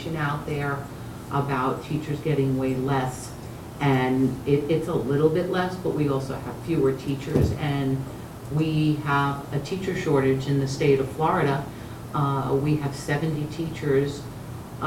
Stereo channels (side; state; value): both; identical; correlation 1.00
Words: out there about teachers getting way less, and it's a little bit less, but we also have fewer teachers, and we have a teacher shortage in the state of Florida. We have 70 teachers,